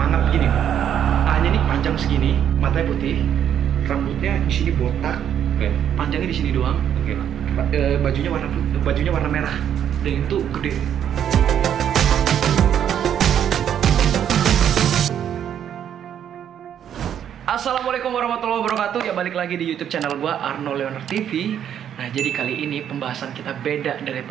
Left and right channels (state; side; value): quieter; left; 9.5 dB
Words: gini. A-nya nih panjang segini, matanya putih, rambutnya di sini botak, panjangnya di sini doang. Bajunya warna merah. Dan itu gede. Assalamualaikum warahmatullahi wabarakatuh. Ya balik lagi di YouTube channel gua Arno Leonard TV. Nah, jadi kali ini pembahasan kita beda